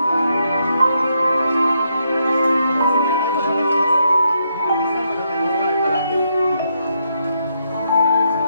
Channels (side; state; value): both; inverted; correlation -0.78